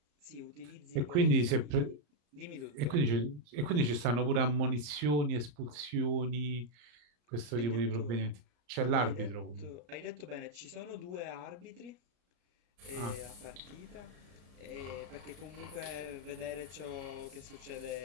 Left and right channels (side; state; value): left; late; 34 ms